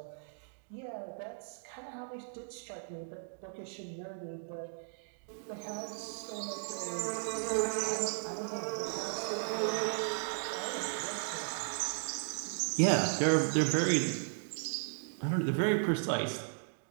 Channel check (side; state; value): left; silent; digital silence